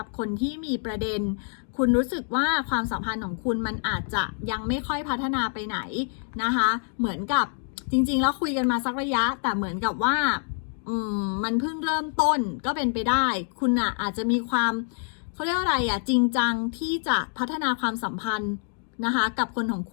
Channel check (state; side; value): silent; right; 61 dB below the other